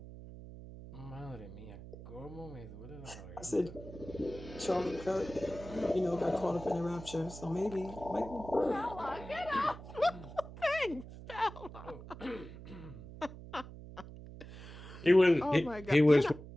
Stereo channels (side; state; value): right; noise; hum, 14 dB below the sound